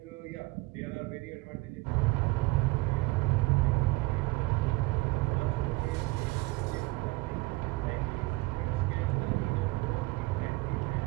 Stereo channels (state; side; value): quieter; left; 22.8 dB